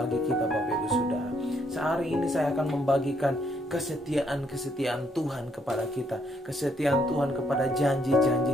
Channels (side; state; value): both; normal; correlation 0.71